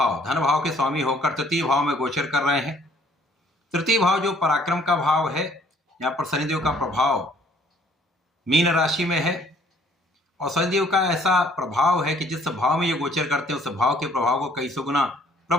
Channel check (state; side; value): normal; both; correlation 0.60